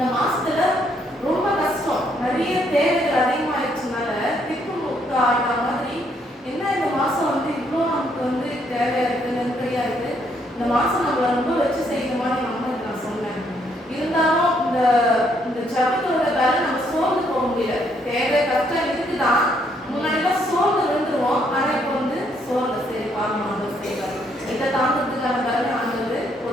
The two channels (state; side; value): normal; both; correlation 0.71